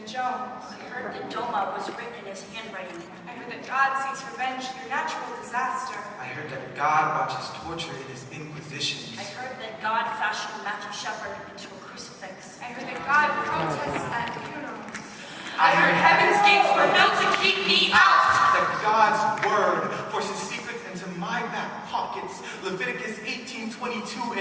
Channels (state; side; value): identical; both; correlation 1.00